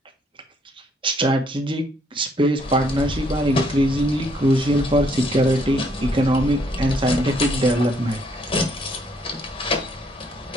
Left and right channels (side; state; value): both; normal; correlation 0.69